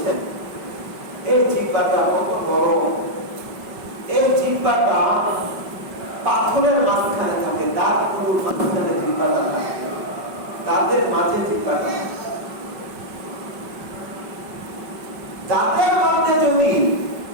এই জিহ্বাটা কত বড়! এই জিহ্বাটা পাথরের মাঝখানে থাকে, দাঁতগুলোর মাঝখানে জিহ্বাটা থাকে, দাঁতের মাঝে জিহ্বাটা। দাঁতের মধ্যে যদি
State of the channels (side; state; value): left; late; 5.3 ms